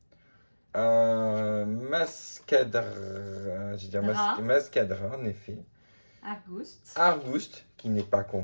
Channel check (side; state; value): both; inverted; correlation -1.00